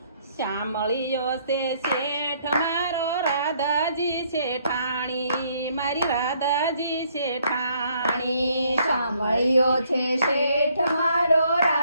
શામળિયો છે શેઠ મારો રાધાજી શેઠાણી, મારી રાધાજી શેઠાણી। શામળિયો છે શેઠ મારો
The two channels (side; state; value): both; inverted; correlation -0.67